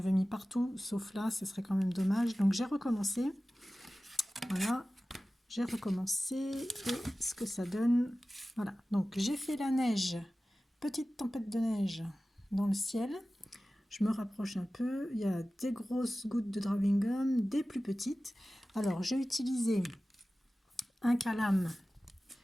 mis partout, sauf là, ce serait quand même dommage. Donc j'ai recommencé. Voilà, j'ai recommencé. Et ce que ça donne, voilà. Donc j'ai fait la neige, petite tempête de neige dans le ciel. Je me rapproche un peu. Il y a des grosses gouttes de drawing gum, des plus petites. Alors j'ai utilisé un calame.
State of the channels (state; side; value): normal; both; correlation 0.96